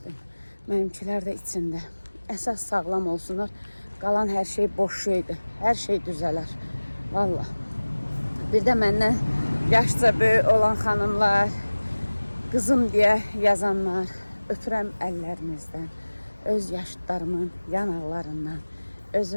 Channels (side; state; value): both; inverted; correlation -1.00